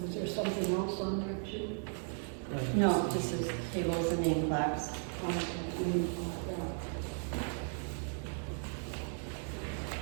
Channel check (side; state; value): left; silent; 54 dB below the other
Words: Was there something else on there too? No, just as tables and name plaques.